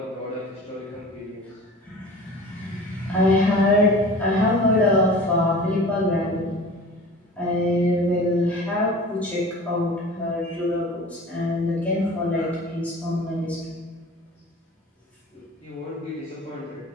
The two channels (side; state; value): both; normal; correlation 0.40